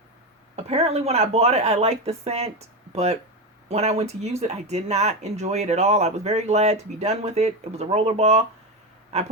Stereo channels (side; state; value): both; normal; correlation 0.15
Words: Apparently when I bought it, I liked the scent, but when I went to use it, I did not enjoy it at all. I was very glad to be done with it. It was a rollerball. I